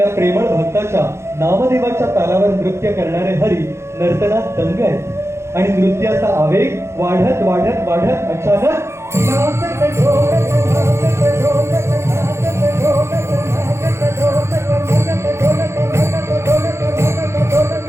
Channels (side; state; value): left; late; 0.13 ms